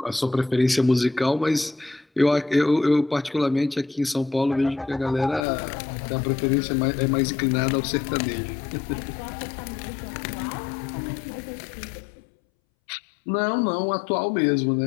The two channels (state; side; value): drops out; right; at 5.5 s